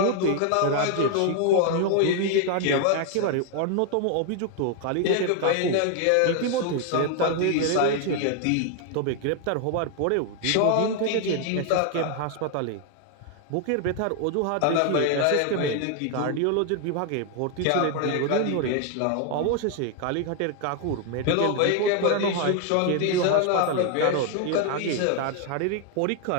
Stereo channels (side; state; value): both; different; correlation 0.00